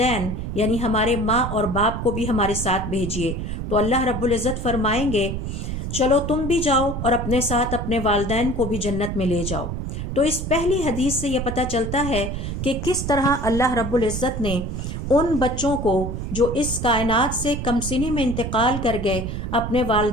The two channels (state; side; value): noise; right; rumble, 4 dB below the sound